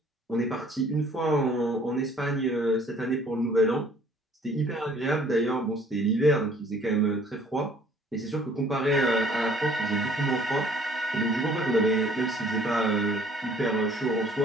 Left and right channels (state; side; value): normal; both; correlation 0.57